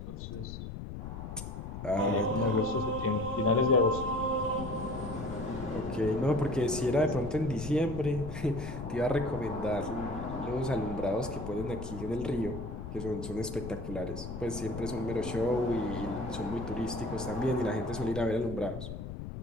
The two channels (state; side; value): noise; left; rumble, 8 dB below the sound